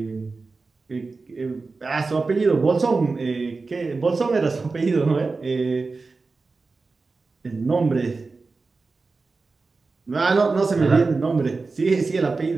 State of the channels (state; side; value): quieter; left; 4.0 dB